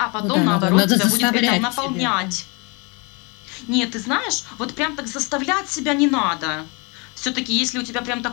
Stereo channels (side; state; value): right; quieter; 30.4 dB